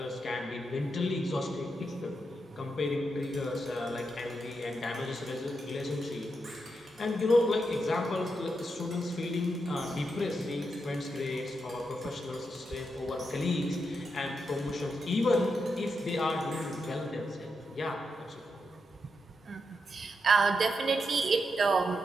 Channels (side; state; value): both; normal; correlation 0.84